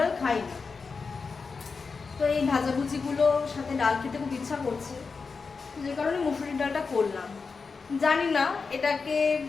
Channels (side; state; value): right; quieter; 4.8 dB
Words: খাই না। তো এই ভাজাভুজিগুলোর সাথে ডাল খেতে খুব ইচ্ছা করছে, যে কারণে মুসুরির ডালটা করলাম। জানি না এটাকে